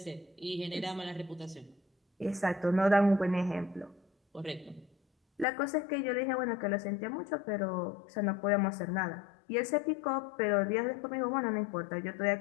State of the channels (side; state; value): right; drops out; at 5.5 s